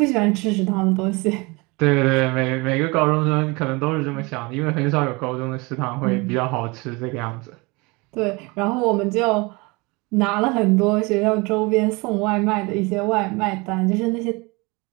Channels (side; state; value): left; quieter; 26.2 dB